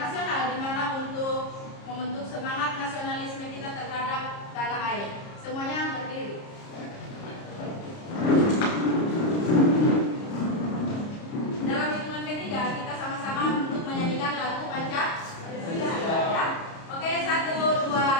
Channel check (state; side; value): late; right; 30 ms